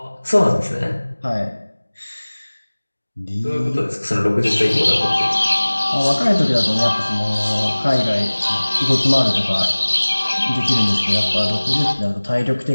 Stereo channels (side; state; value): both; inverted; correlation -1.00